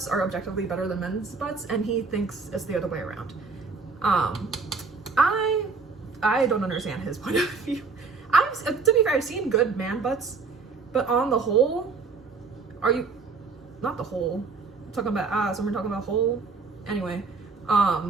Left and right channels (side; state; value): left; quieter; 4.6 dB